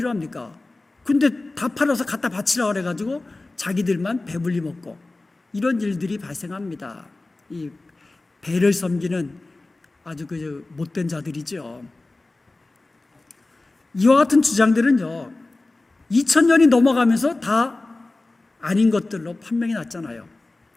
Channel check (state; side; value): quieter; right; 3.1 dB